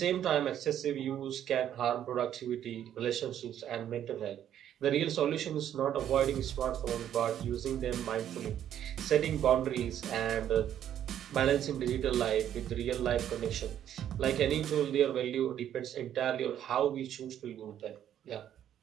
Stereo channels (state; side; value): quieter; left; 10.5 dB